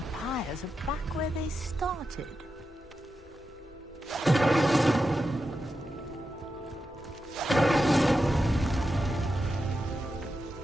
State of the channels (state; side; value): normal; both; correlation 0.89